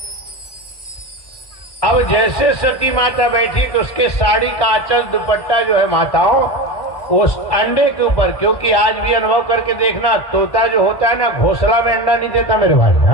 अब जैसे सती माता बैठी तो उसके साड़ी का आंचल दुपट्टा जो है माताओं वो अंडे के ऊपर, क्योंकि आज भी अनुभव करके देखना, तोता जो होता है ना घोंसला में अंडा नहीं देता मेरे भाई।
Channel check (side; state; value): right; late; 1.1 ms